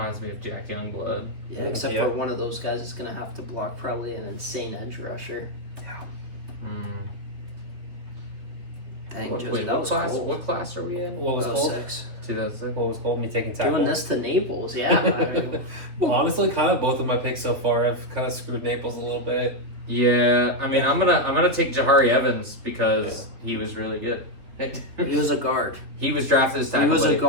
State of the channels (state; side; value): late; left; 3.1 ms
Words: me of Jack Youngblood. Yeah, except Yeah. for one of those guys is gonna have to block probably an insane edge rusher. Mm. Dang, What, Josie, wait, that what was class? cold. What class are we in? What was called? 06. 2006. What was called me taking tackle? Doing this to Naples, yeah. I mean, Well, honestly, kind of both of my picks so far have kind of screwed Naples a little bit. Yeah, I mean, I'm gonna take Jahari Evans because he was really good. he was a guard. He was drafted as He tackle. was a buddy.